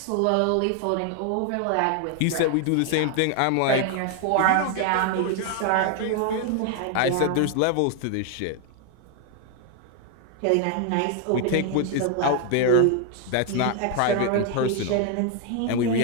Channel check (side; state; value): both; different; correlation 0.00